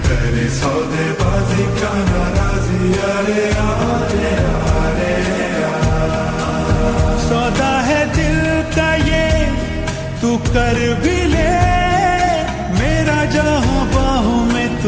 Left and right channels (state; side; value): identical; both; correlation 1.00